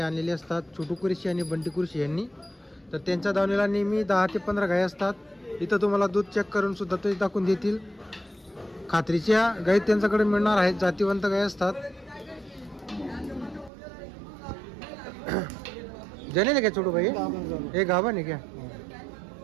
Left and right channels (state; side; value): drops out; left; at 13.7 s